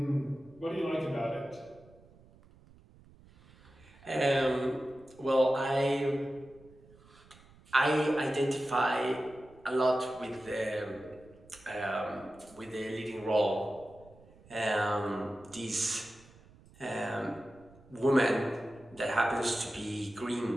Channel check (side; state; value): right; noise; rumble, 25 dB below the sound